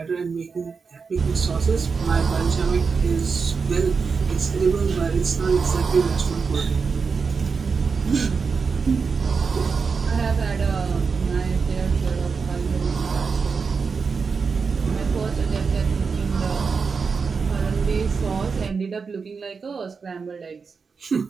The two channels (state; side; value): quieter; left; 5.2 dB